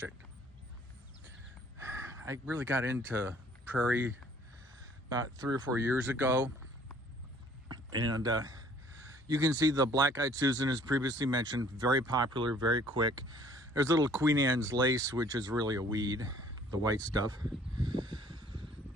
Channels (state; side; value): normal; both; correlation 0.57